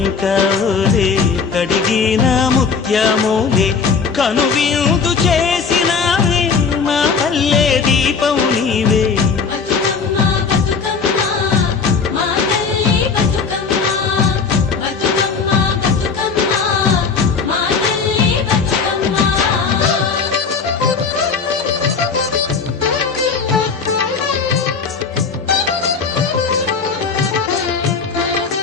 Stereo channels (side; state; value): right; quieter; 5.4 dB